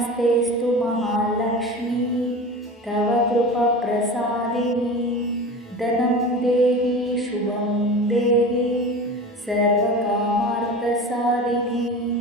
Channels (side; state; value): both; normal; correlation 0.33